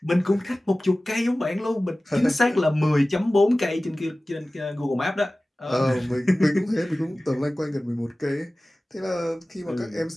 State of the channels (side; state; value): both; normal; correlation 0.97